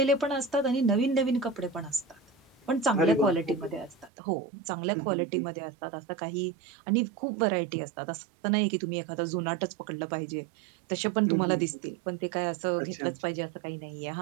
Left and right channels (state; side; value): drops out; left; at 4.1 s